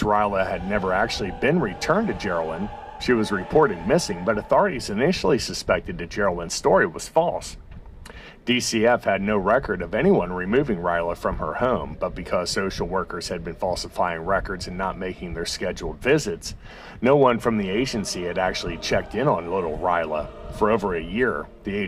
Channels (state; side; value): identical; both; correlation 1.00